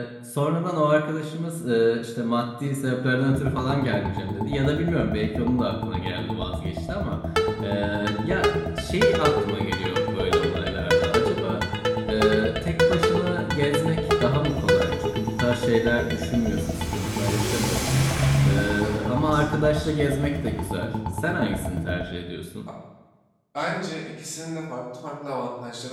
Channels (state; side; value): identical; both; correlation 1.00